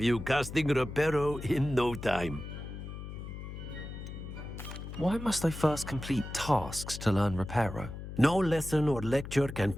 you casting Reparo in no time. Why must I first complete tasks to learn Reparo? No lesson or lecture can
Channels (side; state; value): left; noise; hum, 10 dB below the sound